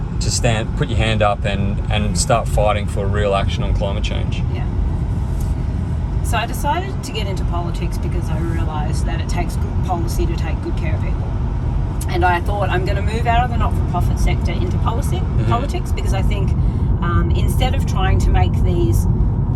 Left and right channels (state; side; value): identical; both; correlation 1.00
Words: stand, put your hand up and start fighting for real action on climate change? Yeah. So I decided to get into politics because I realised that it takes good policy to take good care of people. And I thought I'm going to move out of the not-for-profit sector into politics because I think instead of trying to make these